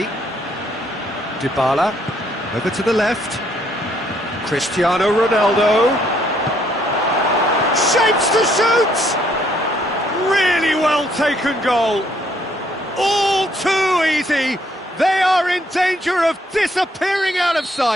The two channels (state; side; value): normal; both; correlation 0.68